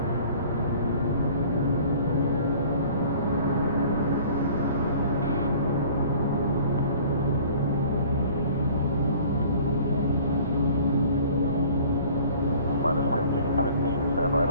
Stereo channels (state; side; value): inverted; both; correlation -0.50